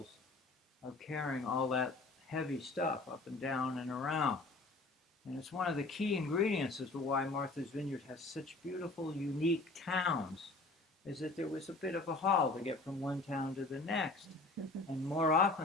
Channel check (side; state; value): right; quieter; 3.3 dB